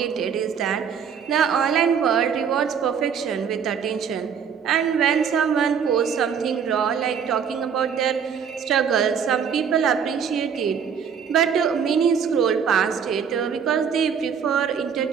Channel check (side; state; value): left; quieter; 7.2 dB